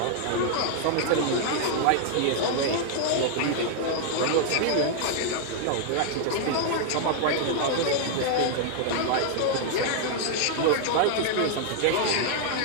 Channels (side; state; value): both; different; correlation -0.01